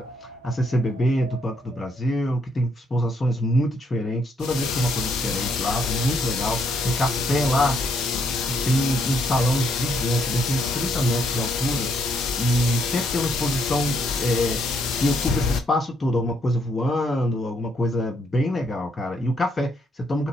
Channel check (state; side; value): normal; both; correlation 0.72